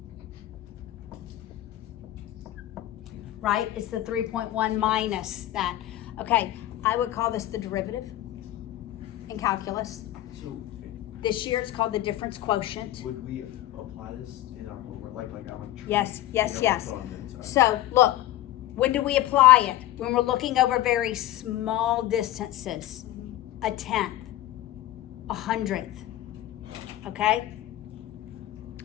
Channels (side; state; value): right; quieter; 14.5 dB